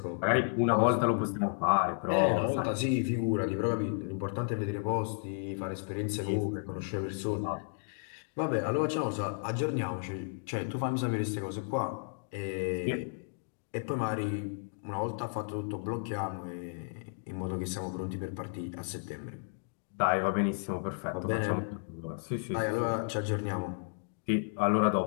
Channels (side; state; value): right; silent; digital silence